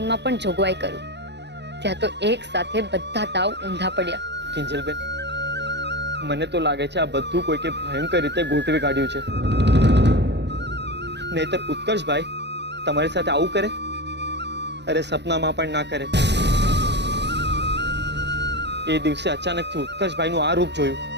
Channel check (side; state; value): left; late; 0.50 ms